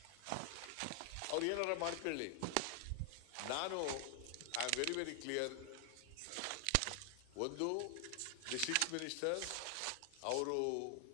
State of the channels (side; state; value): both; different; correlation 0.00